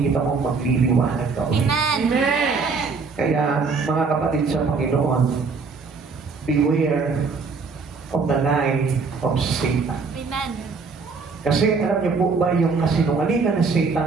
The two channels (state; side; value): quieter; left; 4.7 dB